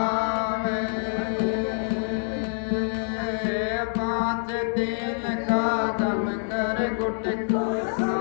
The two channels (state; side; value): silent; right; digital silence